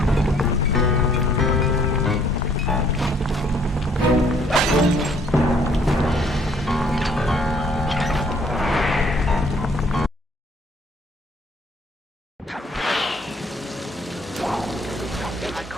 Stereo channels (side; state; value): both; normal; correlation 0.62